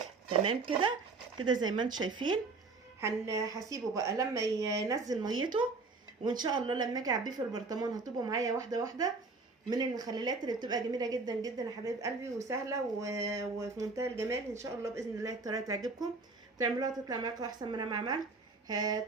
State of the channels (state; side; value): quieter; left; 3.9 dB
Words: تمام كده كده زي ما انتم شايفين. هسيبه بقى لما ينزل ميته، وان شاء الله لما اجي اعبيه في البرطمان هتبقوا معايا واحده من المخللات اللي بتبقى جميله جدا جدا يا حبايب قلبي، وسهله وفي منتهى الجمال. ان شاء الله باذن الله الطريقه تعجبكم، تعملوها تطلع معاكم احسن من انا ما عملت.